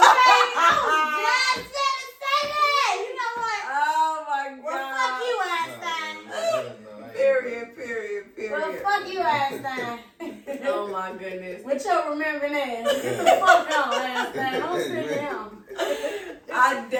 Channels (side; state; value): both; identical; correlation 1.00